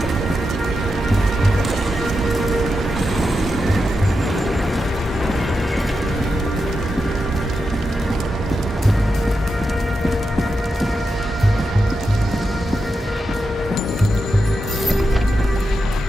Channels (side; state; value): both; normal; correlation 0.88